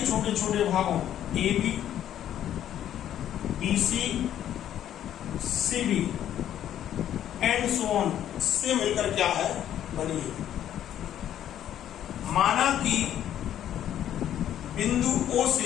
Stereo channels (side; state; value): right; quieter; 11.0 dB